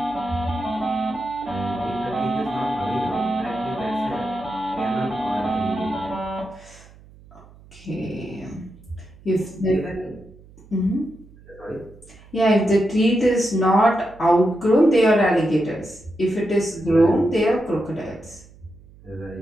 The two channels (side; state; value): right; noise; hum, 23 dB below the sound